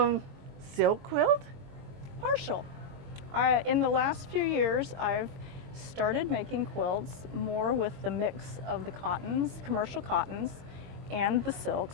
quilt? Partial. In the last few years, I've started making quilts more with the mix of the cottons, commercial cottons, and the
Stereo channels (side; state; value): left; late; 22 ms